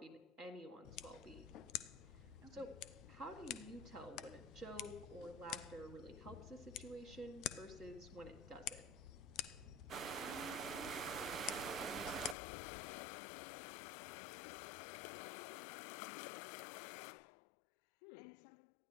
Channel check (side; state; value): right; drops out; at 12.4 s